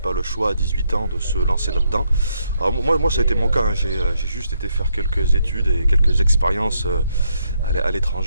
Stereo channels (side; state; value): both; inverted; correlation -0.76